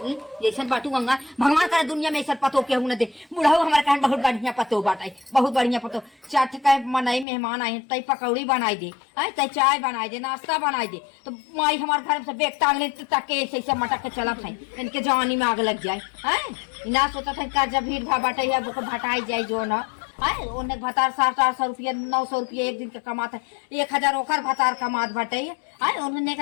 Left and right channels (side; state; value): right; drops out; at 7.2 s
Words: जैसे बाटू गंगा भगवान करे दुनिया में ऐसा पतो के न दे बुढ़ाऊ हमारे कहन बहुत बढ़िया पतो बाटाई बहुत बढ़िया पतो चाट का मनाई मेहमान आए तई पकौड़ी बनाई दे आई तई चाय बनाई दे नाश्ता बनाई दे तो माई हमारे घर से बेग टांग ले तक के ऐसे मटक के चला खाई इनके जवानी में आग लग जाए हैं ना सोचा था का जब भीड़ भाड़ बाटे है वो भटाई जाए जो ना है ओने भतार 700-800 रुपया 900 रुपया एक दिन के कमाता है 1000 ओकर भतार कमात बाटे है उन्होंने